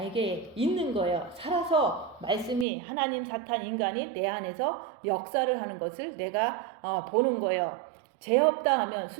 있는 거예요. 살아서 말씀이 하나님, 사탄, 인간이 내 안에서 역사를 하는 것을 내가 보는 거예요. 죄 없다 하면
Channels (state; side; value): drops out; left; at 2.7 s